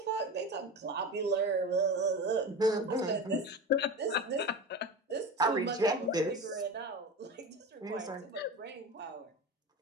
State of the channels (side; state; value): both; normal; correlation 0.27